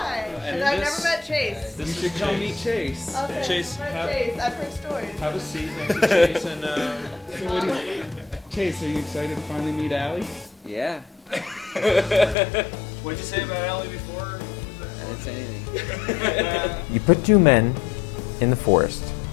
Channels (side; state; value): right; drops out; at 12.4 s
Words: And I've this- never met Chase. You should come meet Chase. Okay. Chase, Met have, Chase. I've heard stories. have a seat next to Chase and So what do you, Chase, are you excited to finally meet Allie? Yeah. what'd you say about Allie before? I didn't say anything. You put two men in the forest,